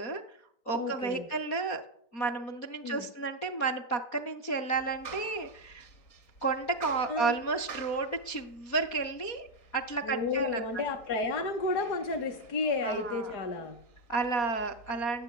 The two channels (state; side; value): late; right; 4.2 ms